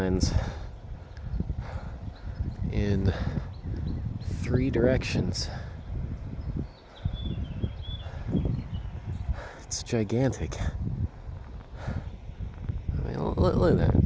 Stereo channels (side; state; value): both; identical; correlation 1.00